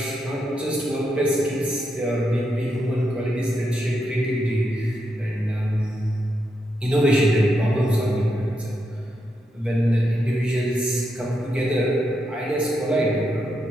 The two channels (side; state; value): both; normal; correlation 0.82